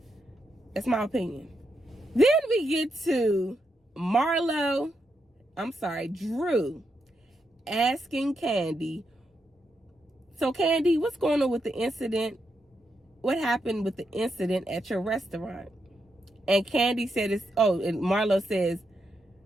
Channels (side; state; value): both; normal; correlation 0.83